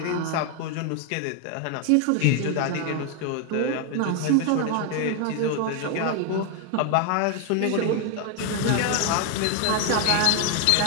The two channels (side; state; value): both; different; correlation 0.01